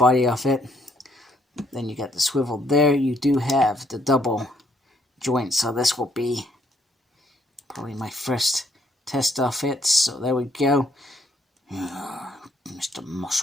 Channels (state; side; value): normal; both; correlation 0.69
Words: of it. Then you got the swivel there. You do have the double joint, so this will be probably my first test of it. So there we go. Mr.